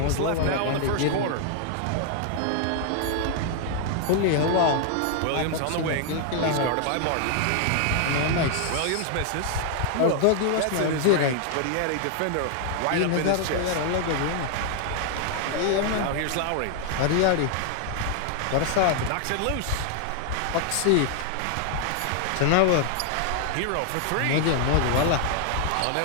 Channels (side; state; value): both; different; correlation 0.00